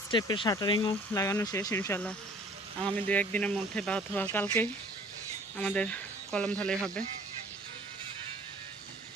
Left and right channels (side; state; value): both; normal; correlation 0.52